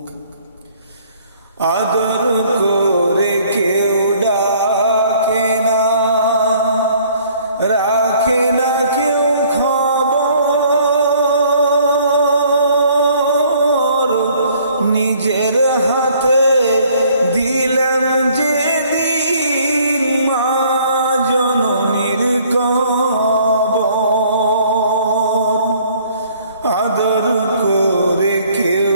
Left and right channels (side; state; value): both; inverted; correlation -0.59